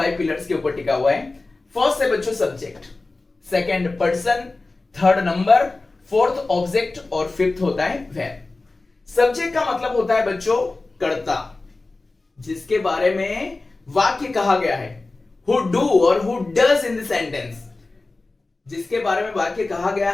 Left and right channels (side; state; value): right; quieter; 3.3 dB